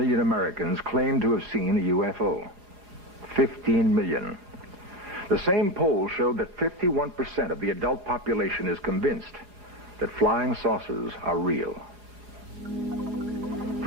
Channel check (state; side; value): late; left; 4.9 ms